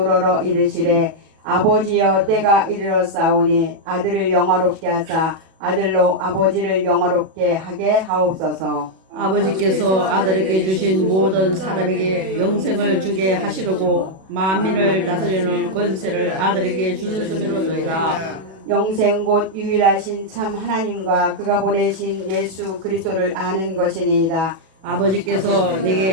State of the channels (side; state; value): left; late; 37 ms